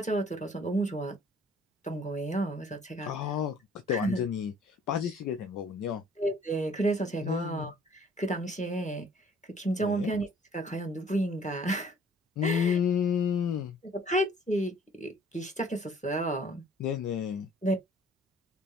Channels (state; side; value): normal; both; correlation 0.56